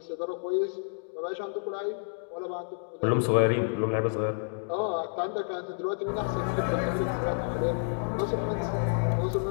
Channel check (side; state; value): right; silent; digital silence